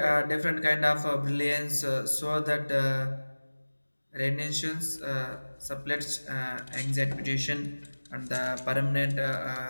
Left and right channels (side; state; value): both; inverted; correlation -1.00